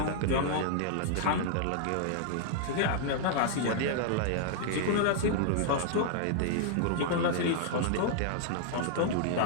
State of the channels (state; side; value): different; both; correlation -0.01